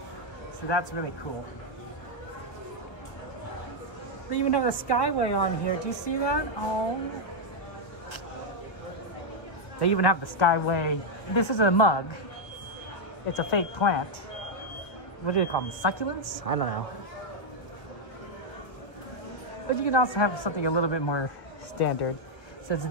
So that's really cool. They even have the Skyway on here. Do you see that? Oh. They even have the Skyway. This is a mug. It's a fake plant. What do you call them? Succulents? I don't know. But you can also have something a little bit more standard. So it's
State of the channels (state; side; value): late; right; 1.4 ms